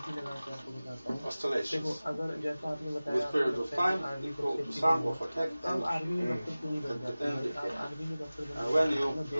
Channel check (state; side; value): inverted; both; correlation -0.98